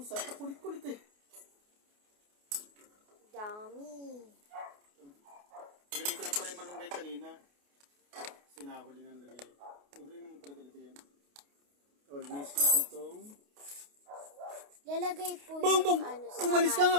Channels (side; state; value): left; late; 28 ms